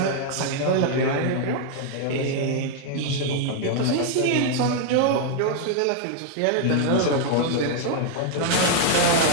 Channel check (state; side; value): different; both; correlation 0.00